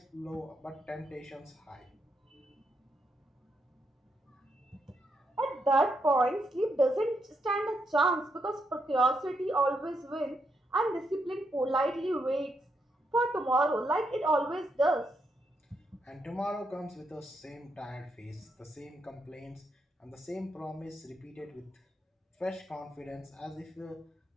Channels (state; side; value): normal; both; correlation 0.80